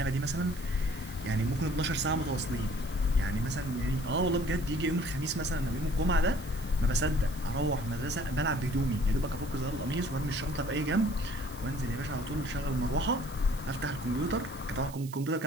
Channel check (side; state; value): right; noise; hiss, 18 dB below the sound